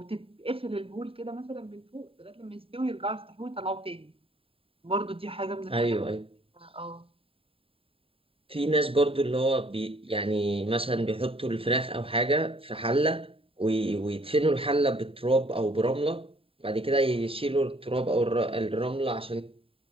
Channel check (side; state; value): left; late; 0.27 ms